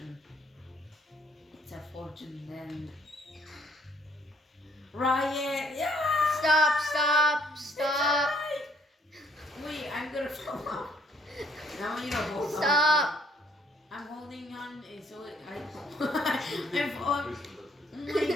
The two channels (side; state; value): both; normal; correlation 0.64